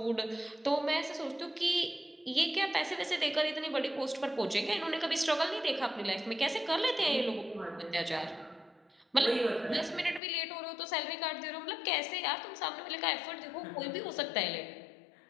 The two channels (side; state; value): right; drops out; at 10.2 s